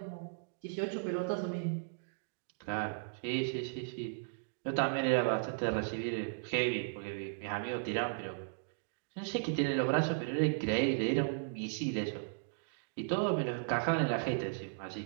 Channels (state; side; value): silent; left; digital silence